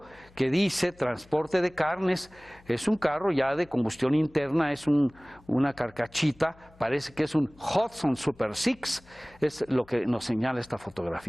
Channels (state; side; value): noise; left; hum, 26 dB below the sound